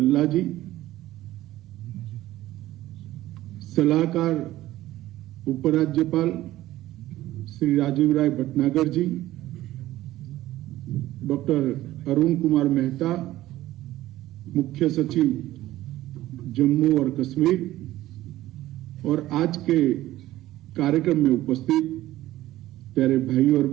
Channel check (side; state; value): left; quieter; 15.3 dB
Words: जी, सलाहकार उपराज्यपाल श्री राजीव राय भटनागर जी, डॉक्टर अरुण कुमार मेहता, मुख्य सचिव जम्मू और कश्मीर, और आज के कार्यक्रम में उपस्थित प्यारे भाई और